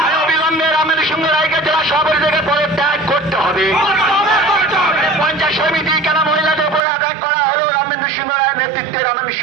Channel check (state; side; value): drops out; left; at 6.8 s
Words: অবিলম্বে রামেন্দ্র সিংহ রায়কে জেলা সভাপতি থেকে পদত্যাগ করতে হবে। পঞ্চায়েত সমিতি কেন মহিলাদের উপরে আঘাত করা হলো? রামেন্দ্র সিংহ রায়ের নেতৃত্বে রামেন্দ্র